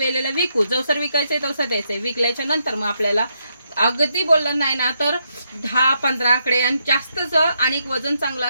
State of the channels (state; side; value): inverted; both; correlation -0.79